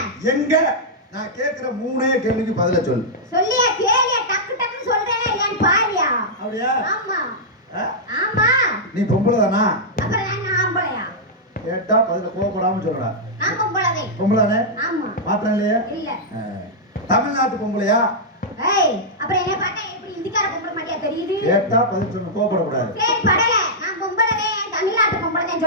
எங்க நான் கேக்குற 3 கேள்விக்கு பதில சொல்லு. சொல்லியா கேளியா டக்கு டக்குன்னு சொல்றேனே இல்லன்னு பாரியா. அப்படியா? ஆமா. ஆ? ஆமா. நீ பொம்பளை தானா? அப்புறம் நான் ஆம்பளையா? கேட்டா பதில கோவப்படாம சொல்லடா. நான் பொம்பளைதே. பொம்பளைதானே? ஆமா. மாற்றம் இல்லையா? இல்ல. தமிழ்நாட்டு பொம்பளையா? ஏய் அப்புறம் என்ன பார்த்தா எப்படி இந்திக்கார பொம்பளை மாதிரியா தெரியுது? கேட்டா பதில் சொல்லு கோவப்படக்கூடாது. சரி படல நான் பொம்பளைதே தமிழ்நாட்டு பொம்பளைதே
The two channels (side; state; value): both; normal; correlation -0.08